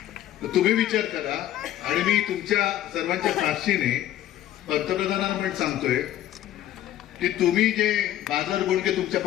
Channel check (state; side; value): quieter; right; 12.8 dB